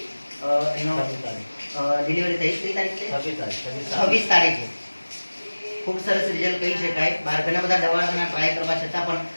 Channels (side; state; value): both; inverted; correlation -1.00